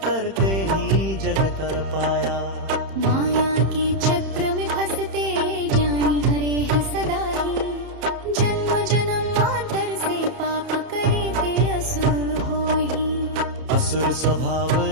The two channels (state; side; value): late; left; 31 ms